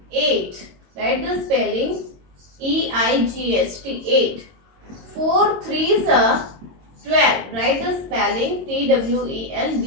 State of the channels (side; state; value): left; late; 22 ms